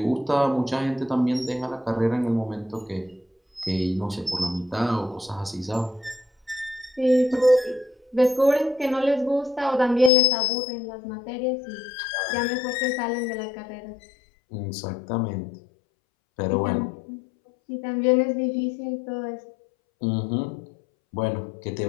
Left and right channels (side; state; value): right; drops out; at 10.1 s